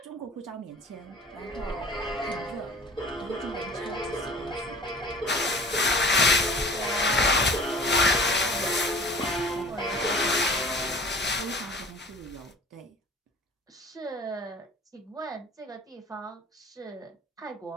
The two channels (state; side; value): normal; both; correlation 0.45